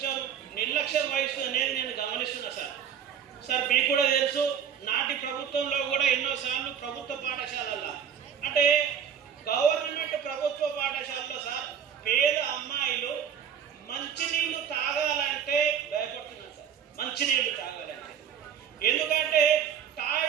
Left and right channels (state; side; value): quieter; left; 8.0 dB